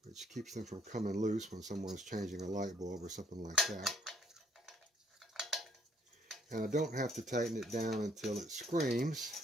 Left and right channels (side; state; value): both; normal; correlation 0.64